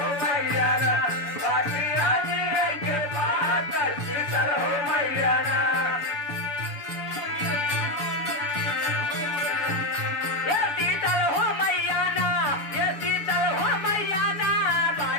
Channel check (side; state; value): right; late; 7.1 ms